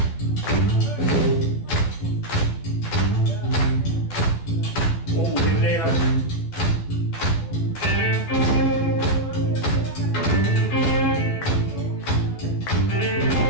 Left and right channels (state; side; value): late; right; 12 ms